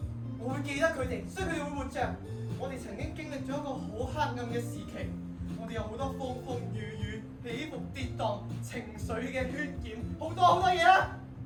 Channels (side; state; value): both; identical; correlation 1.00